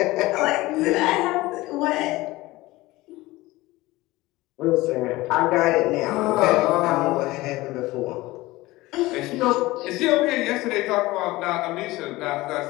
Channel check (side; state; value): right; quieter; 19.4 dB